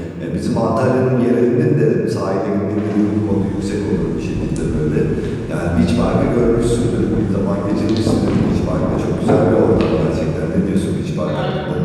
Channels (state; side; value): identical; both; correlation 1.00